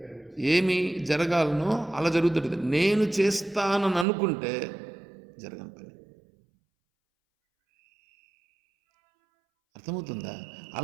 ఏమి జరగాలనో అలా జరుగుతుంది. నేను చేస్తానని అనుకుంటే జరగని పని. అర్థమవుతుందా?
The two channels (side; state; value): left; drops out; at 4.0 s